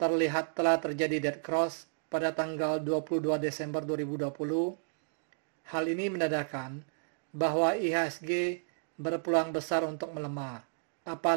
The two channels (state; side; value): silent; left; digital silence